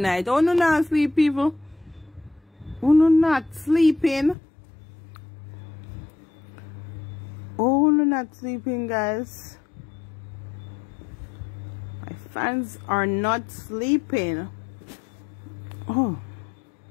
Oh, no, not sleep, people. Oh, no, not sleeping. Oh, no, not sleeping, guys. My fans are not sleeping. Oh.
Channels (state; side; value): drops out; right; at 4.4 s